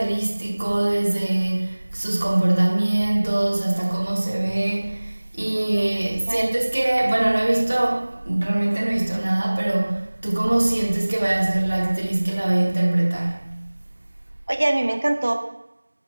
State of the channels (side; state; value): both; inverted; correlation -1.00